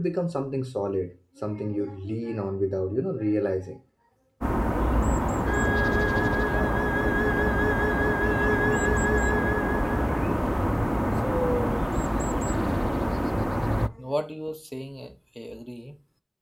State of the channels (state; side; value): identical; both; correlation 1.00